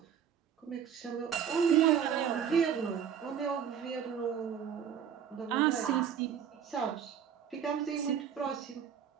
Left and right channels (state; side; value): quieter; left; 8.3 dB